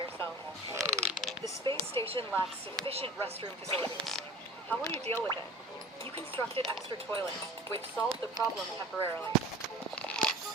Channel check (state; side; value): normal; both; correlation 0.41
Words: The space station lacks sufficient restroom facilities. How will you deal with it? You constructed extra toilets, which solved the problem temporarily.